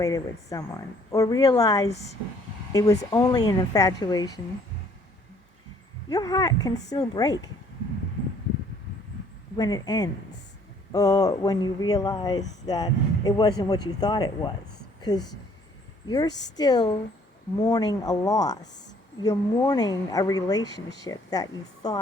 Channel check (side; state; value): both; normal; correlation 0.60